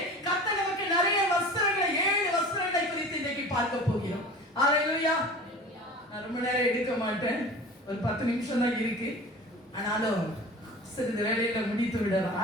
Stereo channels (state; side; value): normal; both; correlation 0.39